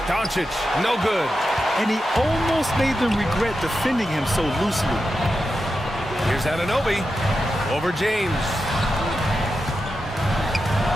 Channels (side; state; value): both; normal; correlation 0.89